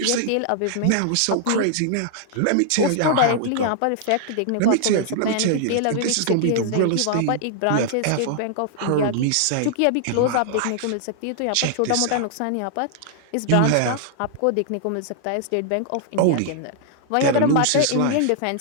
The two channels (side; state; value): both; different; correlation -0.01